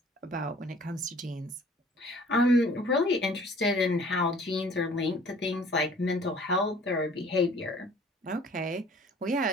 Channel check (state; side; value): normal; both; correlation 0.52